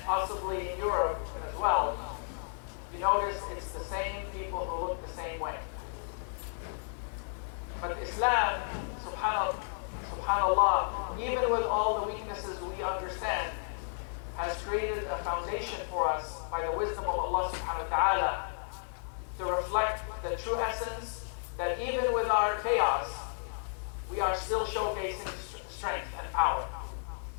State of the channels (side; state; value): right; silent; digital silence